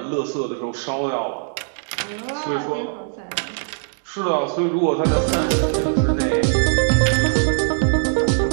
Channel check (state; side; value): silent; left; digital silence